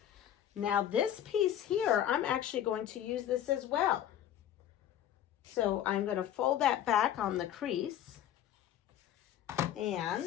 Now this piece here, I'm actually going to use this as well. So I'm going to fold that back on the crease,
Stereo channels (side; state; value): right; quieter; 11.0 dB